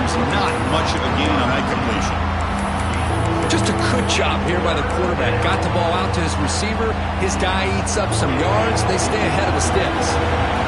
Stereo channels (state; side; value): identical; both; correlation 1.00